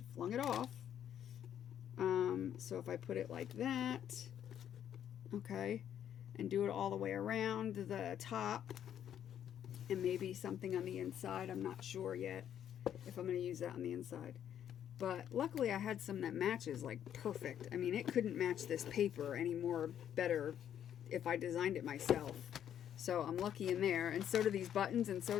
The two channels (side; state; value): right; quieter; 9.9 dB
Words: flung it off. So if I put it like that, okay, and do it all the way around the top, and maybe something on the inside. I'm not sure yet if I'm going to use that on the inside. But luckily I had some that matches like perfect. I mean, it couldn't match this paper any more better if I designed it myself. So I'm lucky in there. And so do these buttons, and so